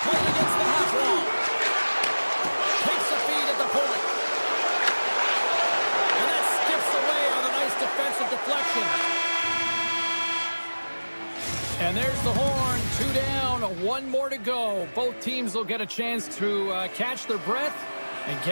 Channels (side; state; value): both; inverted; correlation -1.00